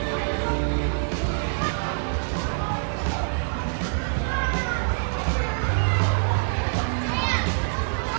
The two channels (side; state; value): left; silent; digital silence